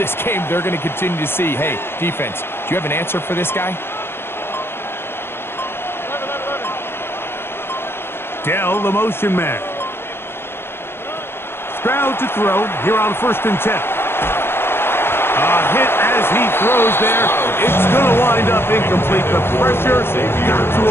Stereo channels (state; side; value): late; right; 0.11 ms